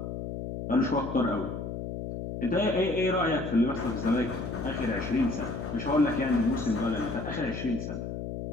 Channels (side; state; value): left; noise; hum, 6 dB below the sound